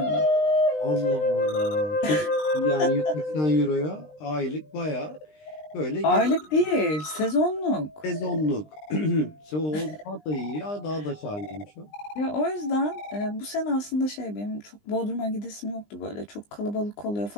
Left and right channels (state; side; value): late; right; 20 ms